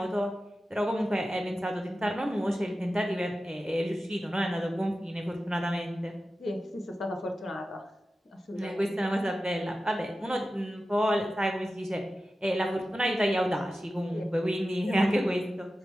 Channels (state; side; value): normal; both; correlation 0.93